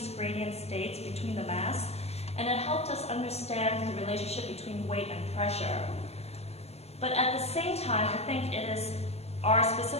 gradient states between the mass, and it helped us understand the relationship between weight and pressure. But at the same time, I think it is our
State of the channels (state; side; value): late; right; 0.30 ms